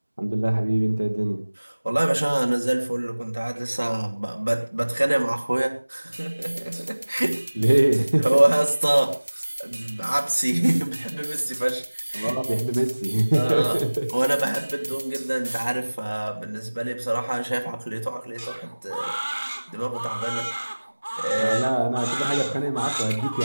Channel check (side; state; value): both; inverted; correlation -1.00